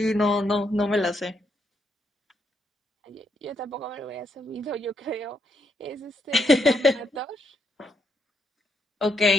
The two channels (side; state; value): both; normal; correlation 0.76